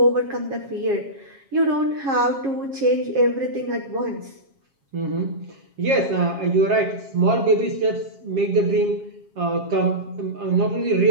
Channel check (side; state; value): left; late; 7.4 ms